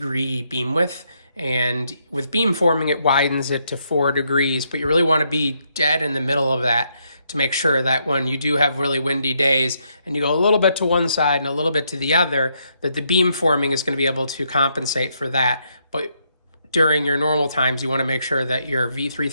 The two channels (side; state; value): both; inverted; correlation -0.76